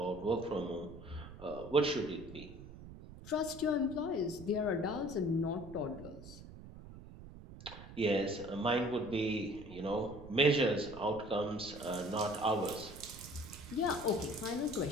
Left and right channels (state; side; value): noise; right; rumble, 15 dB below the sound